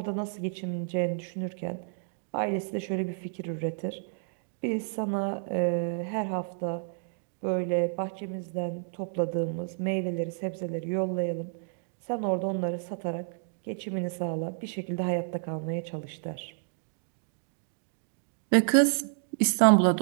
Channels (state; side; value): silent; left; digital silence